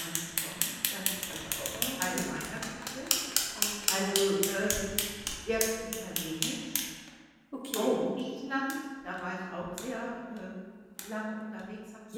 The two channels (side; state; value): both; identical; correlation 1.00